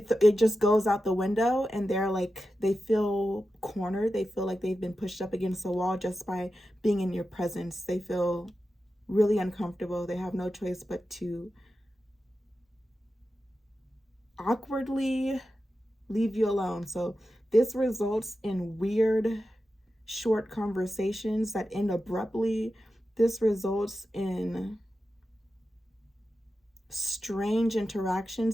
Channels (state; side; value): normal; both; correlation 0.91